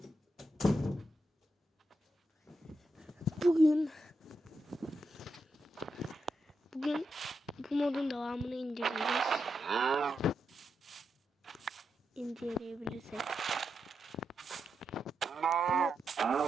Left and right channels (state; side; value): normal; both; correlation 0.85